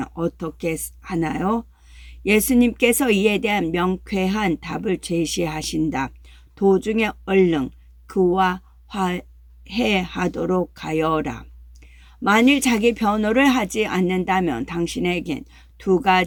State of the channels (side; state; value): both; identical; correlation 1.00